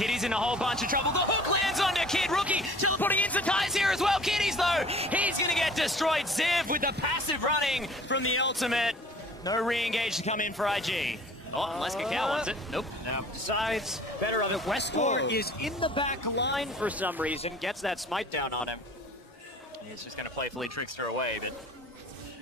in a whole bunch of trouble. The hook lands on the Kid. Rookie teleporting into ties here as well. Kitty's, though, he's going to get destroyed. Ziv with the passive running from the ultimate. No re-engage to come in for IG. Oh, unless Kakao wants it. Nope. No. Decides better of it. Westcore is in the back line for some reason. Gets that smite down on him. He's just going to playfully trickster away, but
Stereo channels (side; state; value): both; normal; correlation 0.49